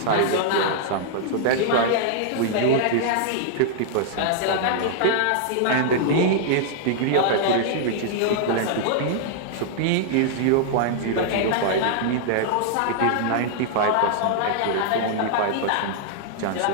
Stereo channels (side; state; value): both; different; correlation -0.01